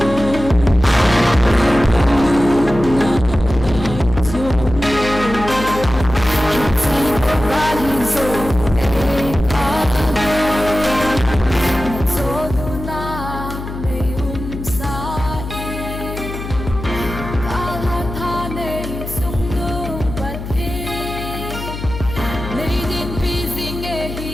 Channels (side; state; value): left; noise; hum, 8 dB below the sound